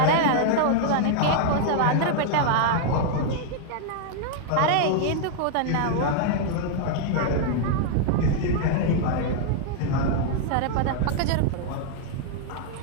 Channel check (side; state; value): both; different; correlation 0.00